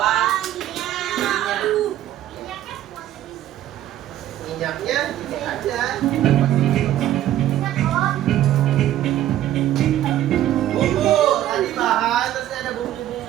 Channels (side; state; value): left; quieter; 12.7 dB